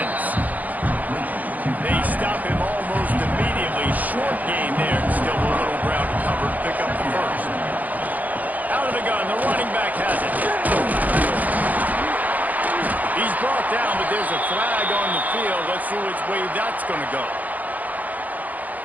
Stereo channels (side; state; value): left; late; 0.080 ms